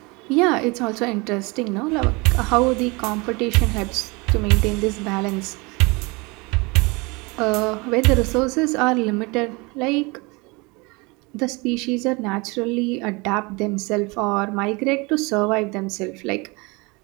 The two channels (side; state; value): left; quieter; 26.6 dB